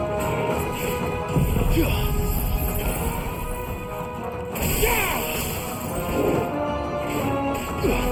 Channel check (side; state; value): both; identical; correlation 1.00